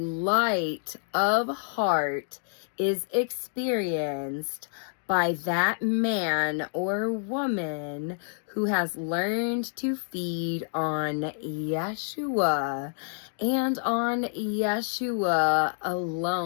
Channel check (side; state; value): right; silent; digital silence